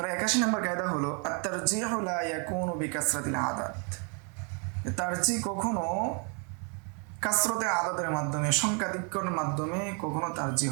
81 নম্বর কায়দা হলো আত-তারজিহু লা ইয়াকুনু বিকাসরাতিল আদাদ। তারজিহ কখনো কাসরতে আদাদের মাধ্যমে, সংখ্যাধিক্যের মাধ্যমে কখনো তারজিহ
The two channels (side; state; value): left; quieter; 37.1 dB